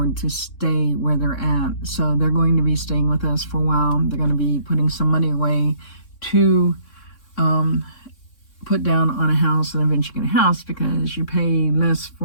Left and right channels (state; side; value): late; right; 3.6 ms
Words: to stay where they're at. So they're going to be staying with us for a while. They're going to be putting some money away to put down on a house and eventually get a house, because you pay less